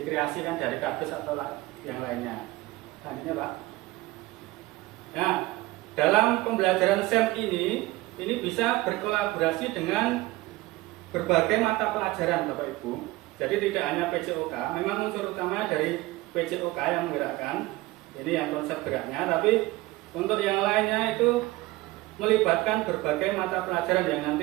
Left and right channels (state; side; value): quieter; left; 19.6 dB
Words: dari kardus atau yang lainnya. Selanjutnya Pak. Nah, dalam pembelajaran SEM ini bisa berkolaborasi dengan berbagai mata pelajaran Bapak Ibu. Jadi tidak hanya PJOK, memang unsur utama dari PJOK yang menggerakkan, ini yang konsep geraknya, tapi untuk yang lainnya itu melibatkan berbagai mata pelajaran yang